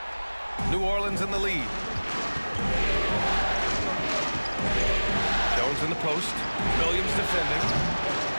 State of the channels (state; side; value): inverted; both; correlation -1.00